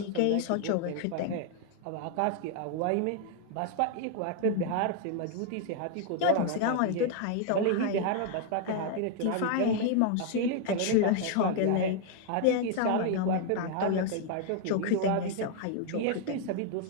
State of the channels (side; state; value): both; different; correlation 0.00